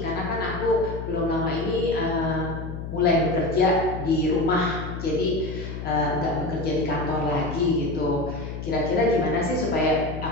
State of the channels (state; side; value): noise; left; hum, 7 dB below the sound